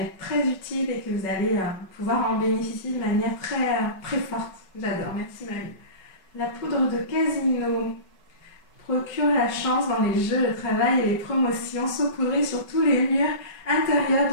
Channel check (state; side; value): late; right; 5.3 ms